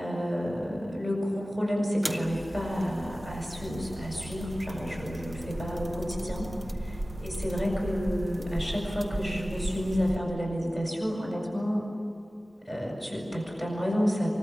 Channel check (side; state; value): both; normal; correlation 0.96